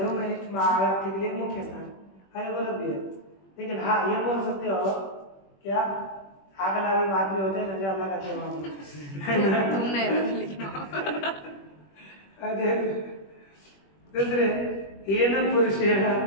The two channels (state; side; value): late; right; 21 ms